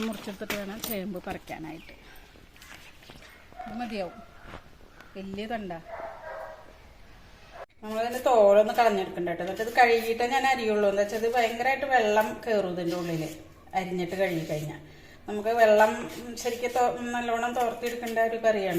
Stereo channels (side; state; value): both; identical; correlation 1.00